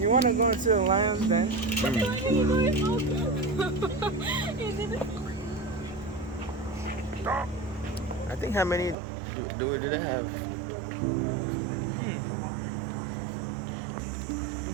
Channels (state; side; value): drops out; left; at 9.0 s